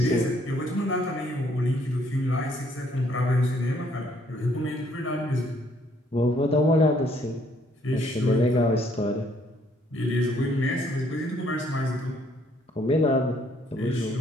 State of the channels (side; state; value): both; normal; correlation 0.66